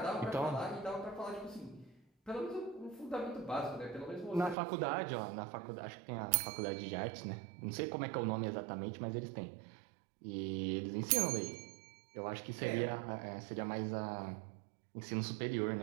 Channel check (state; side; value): drops out; left; at 4.5 s